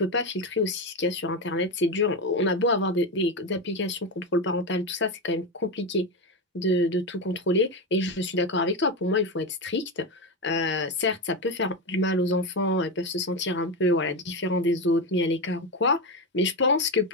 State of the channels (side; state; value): both; normal; correlation 0.15